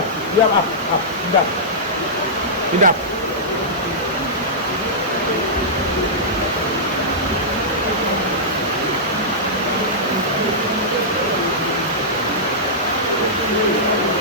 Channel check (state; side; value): normal; both; correlation -0.13